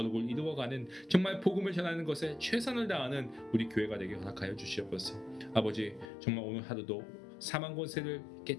이루어가는 정말 복음을 전하는 것에 최선을 다하는 우리 교회가 되게 허락하여 주시옵소서. 아버지 정말 오늘 하루도 사망 권세를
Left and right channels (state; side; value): drops out; right; at 6.1 s